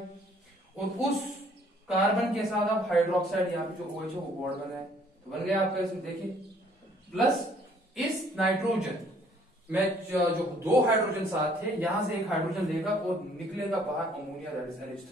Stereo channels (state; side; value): normal; both; correlation 0.60